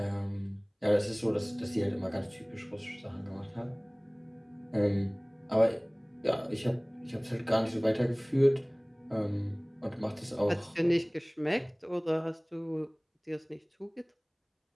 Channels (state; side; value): identical; both; correlation 1.00